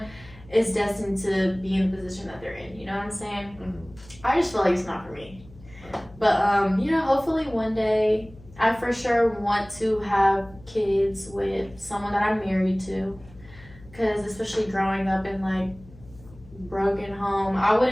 is destined to be in the position that they're in, you know what I'm saying? Mm-hmm. I just feel like it's not for me. But, you know, hopefully one day I for sure want to have kids with someone that I'm married to, because especially growing up in like broken home, I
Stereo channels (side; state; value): left; noise; hum, 22 dB below the sound